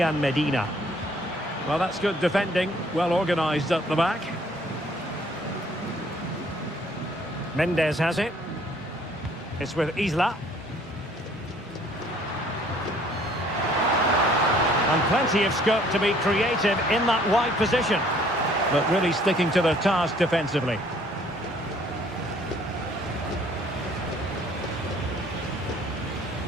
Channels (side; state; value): both; normal; correlation 0.59